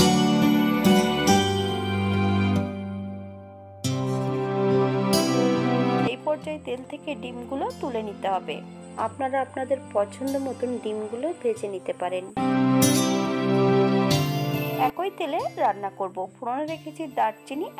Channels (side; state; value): both; identical; correlation 1.00